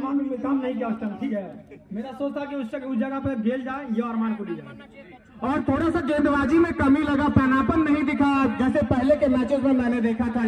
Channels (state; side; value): identical; both; correlation 1.00